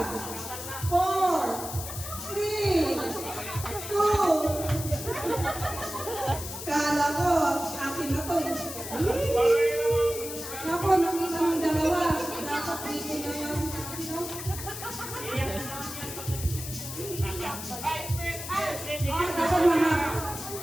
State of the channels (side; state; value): left; noise; hiss, 8 dB below the sound